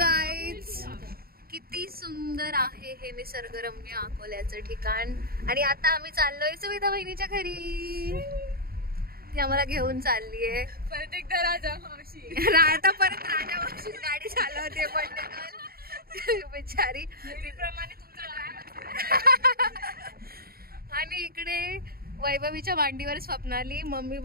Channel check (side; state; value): left; late; 0.44 ms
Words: किती सुंदर आहे हे निसर्गरम्य अकोल्याचं ठिकाण। आणि आता आम्ही चाललोय सुविधा बहिणीच्या घरी। ती आम्हाला घेऊन चाललीये परत एकदा राजा मावशी। आता परत राजा मावशी गाडी चालवते पण बिचारी आणि इकडे वैभवीच्या मांडीवर स्वप्नाली मम्मी